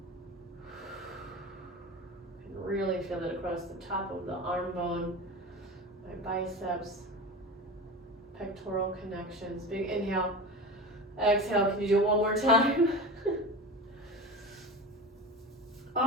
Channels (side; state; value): both; normal; correlation 0.29